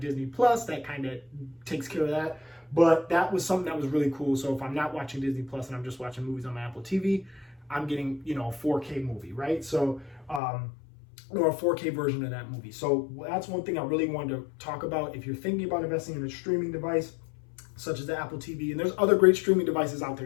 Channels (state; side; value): drops out; right; at 10.4 s